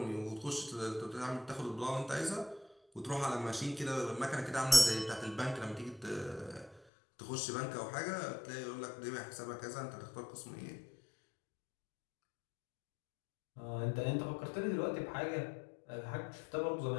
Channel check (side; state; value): right; drops out; at 6.8 s